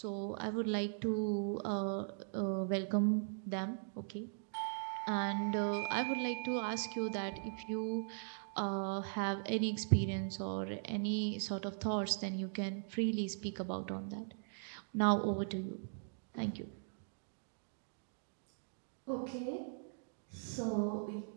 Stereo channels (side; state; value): left; silent; digital silence